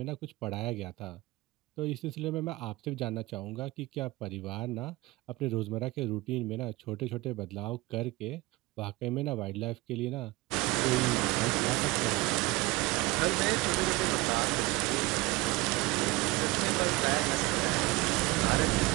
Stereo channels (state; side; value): quieter; left; 21.1 dB